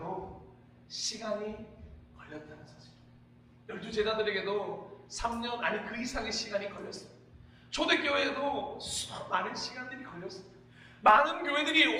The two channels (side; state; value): both; identical; correlation 1.00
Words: 시간이 걸렸다는 사실. 12제자들에게도 3년 아니 그 이상의 시간이 걸렸어요. 초대교회에도 많은 시간들이 걸렸습니다. 많은